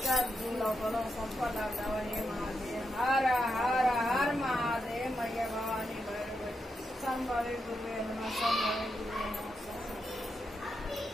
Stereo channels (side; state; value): both; normal; correlation 0.85